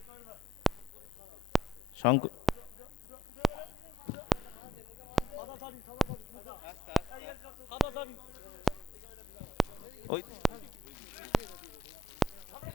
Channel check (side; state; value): both; normal; correlation 0.68